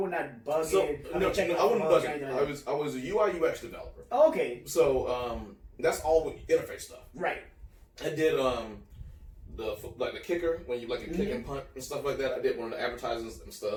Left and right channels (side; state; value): both; identical; correlation 1.00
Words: not bugging. So, I wasn't bugging. I was a UI UX developer. Oh, okay. So that's all with interface stuff. Right. I did the kicker when you like a kick and punt and stuff like that. I did one of the advertisements and